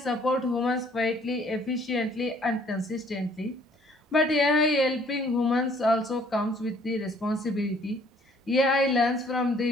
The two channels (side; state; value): both; normal; correlation 0.60